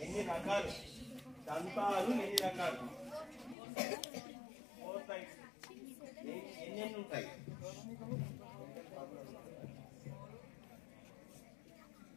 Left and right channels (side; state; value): right; drops out; at 3.6 s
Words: ఎన్ని రకాలు దంతాలు, ఎన్ని రకాలు? 4 టైప్స్. ఎన్ని ఉంటాయి?